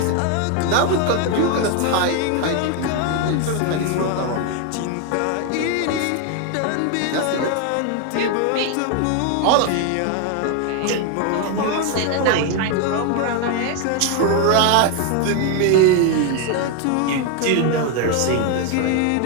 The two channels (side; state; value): both; different; correlation 0.01